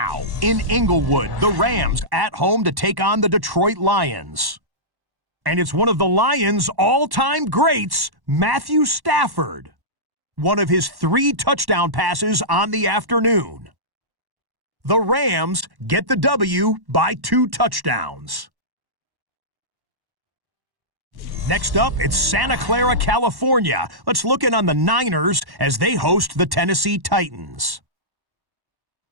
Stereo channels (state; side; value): late; left; 1.1 ms